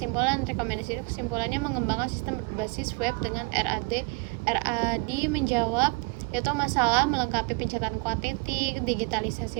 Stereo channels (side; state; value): left; quieter; 29.5 dB